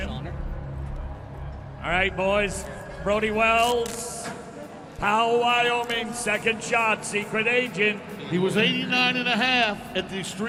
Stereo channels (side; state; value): both; identical; correlation 1.00